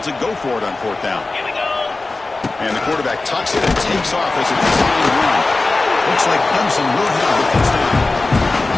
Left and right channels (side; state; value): right; quieter; 3.4 dB